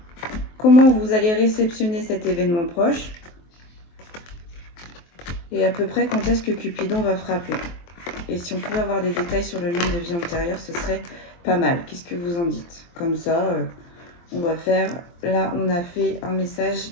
Comment vous allez réceptionner cet événement proche? Et à peu près quand est-ce que Cupidon va frapper? Et si on pouvait avoir des détails sur le lien de vie antérieure, ce serait pas mal. Qu'est-ce que vous en dites? Comme ça, on va faire... Là, on a fait un message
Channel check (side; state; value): right; late; 23 ms